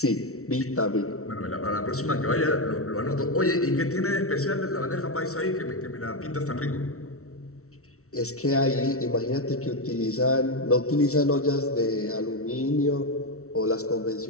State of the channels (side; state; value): right; late; 0.64 ms